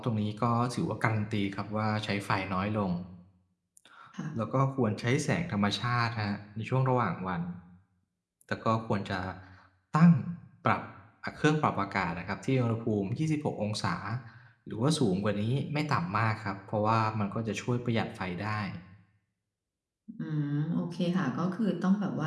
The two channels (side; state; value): both; identical; correlation 1.00